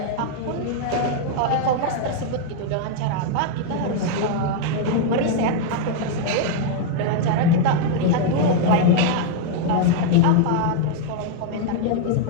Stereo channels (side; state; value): both; different; correlation 0.00